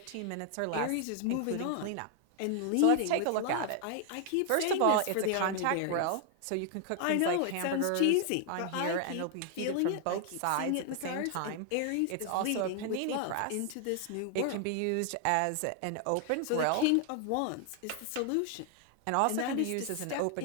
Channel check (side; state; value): both; different; correlation 0.00